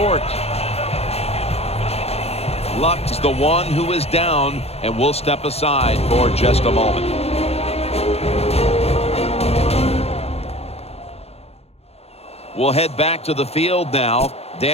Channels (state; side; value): late; right; 0.30 ms